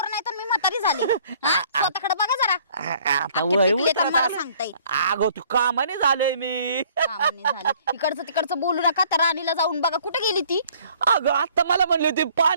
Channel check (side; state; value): both; inverted; correlation -0.57